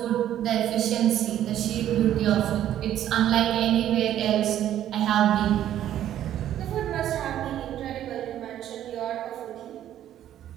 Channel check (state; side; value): quieter; left; 11.6 dB